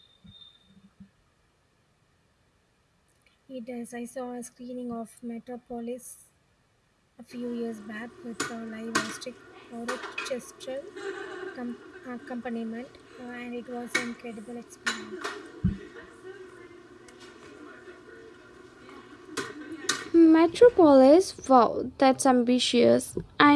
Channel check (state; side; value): identical; both; correlation 1.00